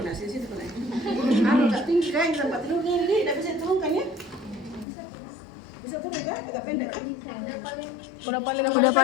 nasi situ pun? Agak tinggi kan tempat tidur ini, tidak bisa turunkan ya? Bisa turun kan? Agak pendek kan? Udah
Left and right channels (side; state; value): right; drops out; at 4.9 s